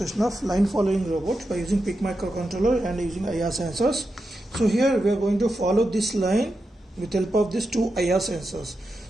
of line following robot by using PIC microcontroller and using IR sensors. So here we are going to follow this line with help of these two IR sensors.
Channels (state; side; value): normal; both; correlation 0.88